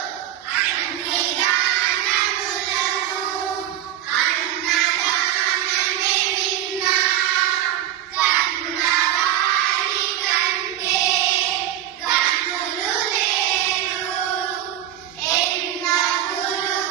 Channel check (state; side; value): quieter; left; 12.1 dB